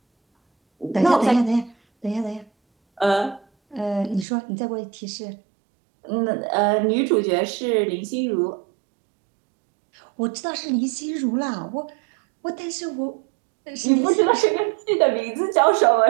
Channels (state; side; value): drops out; left; at 4.2 s